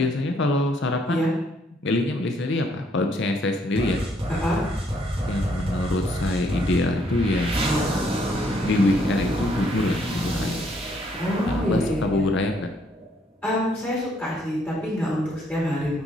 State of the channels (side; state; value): both; normal; correlation 0.69